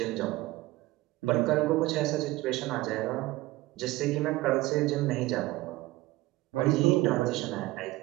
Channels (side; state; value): left; quieter; 18.8 dB